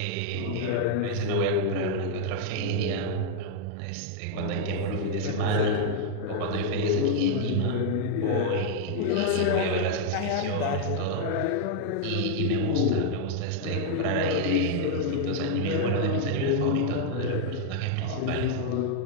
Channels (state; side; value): different; both; correlation 0.00